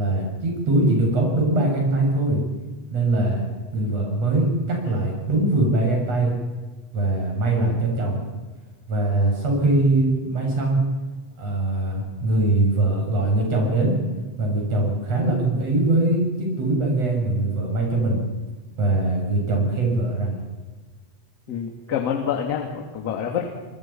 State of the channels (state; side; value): late; left; 8.2 ms